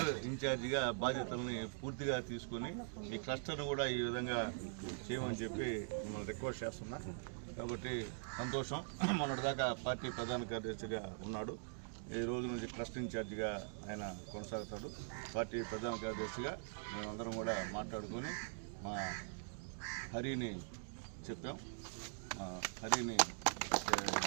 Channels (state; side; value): silent; left; digital silence